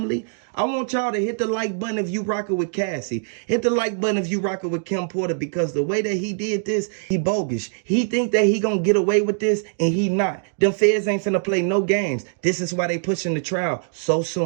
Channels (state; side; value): silent; left; digital silence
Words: I want y'all to hit the like button if you rockin' with Cassie. Hit the like button if you rockin' with Kim Porter, because the way that he did this, he bogus. He think that he gonna get away with this, and he not. Them feds ain't finna play no games. This is why they pushing the trial so